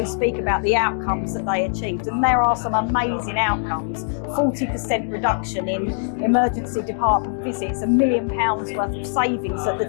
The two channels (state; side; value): silent; right; 64 dB below the other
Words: speak about the outcomes that they achieved. And there are some amazing outcomes. 40% reduction in emergency department visits, £1 million worth of savings that the